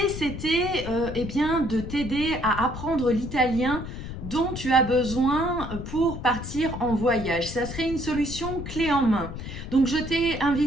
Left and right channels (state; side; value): noise; left; rumble, 8 dB below the sound